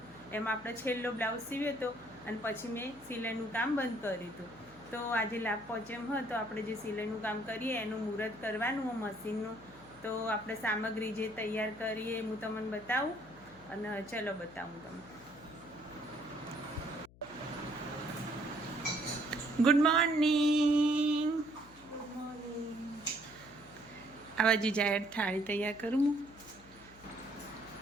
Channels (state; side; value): noise; left; hum, 23 dB below the sound